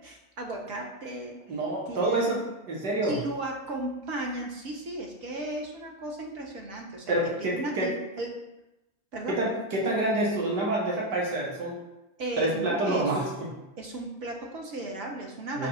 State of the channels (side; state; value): left; late; 5.4 ms